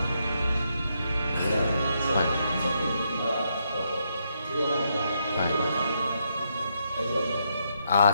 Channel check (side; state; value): both; inverted; correlation -0.78